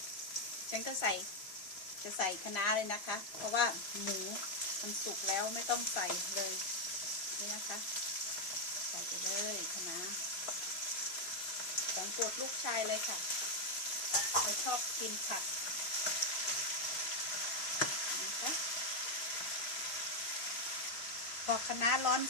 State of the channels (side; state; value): right; late; 3.0 ms